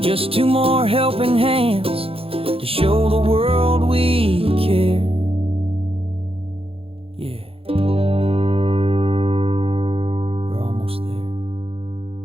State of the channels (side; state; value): left; late; 0.27 ms